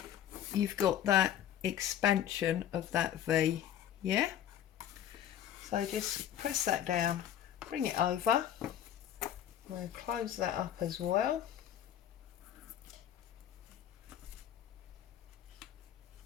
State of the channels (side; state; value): right; quieter; 10.6 dB